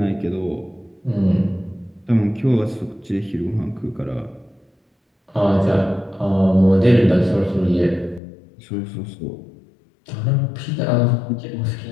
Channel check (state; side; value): drops out; right; at 8.2 s